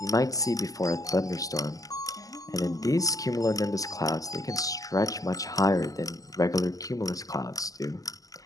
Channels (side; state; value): right; late; 0.17 ms